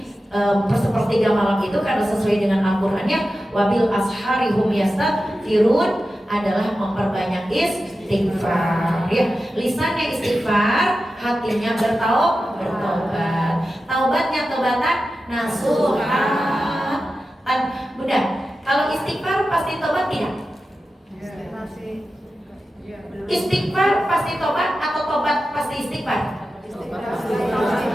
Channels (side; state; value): both; normal; correlation 0.92